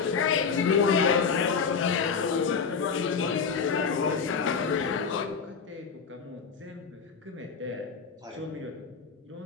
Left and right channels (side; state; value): right; quieter; 5.7 dB